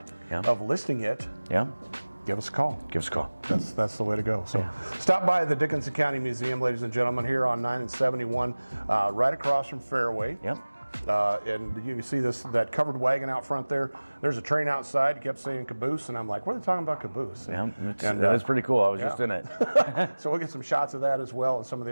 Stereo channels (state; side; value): inverted; both; correlation -1.00